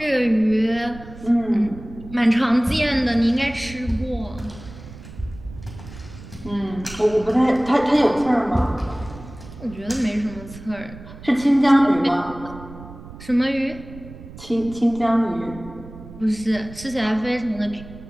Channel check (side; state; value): right; noise; rumble, 16 dB below the sound